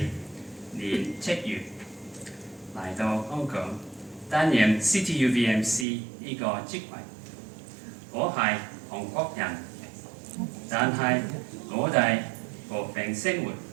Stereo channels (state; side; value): drops out; left; at 5.9 s